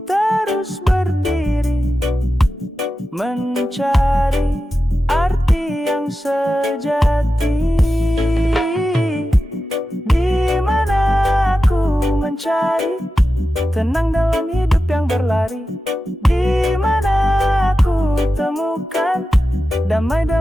terus berdiri, mencari arti yang sejati. Di mana aku mencari tenang dalam hidup yang berlari? Di mana aku temukan damai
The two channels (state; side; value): normal; both; correlation 0.92